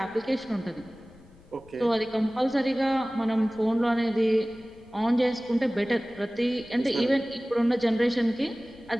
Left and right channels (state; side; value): noise; left; rumble, 26 dB below the sound